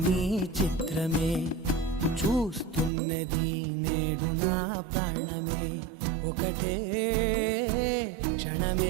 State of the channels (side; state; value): left; drops out; at 2.9 s